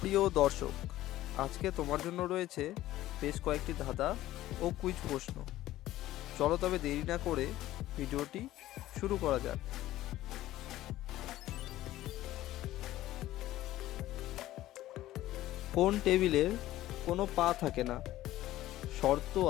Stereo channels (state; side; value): quieter; right; 15.0 dB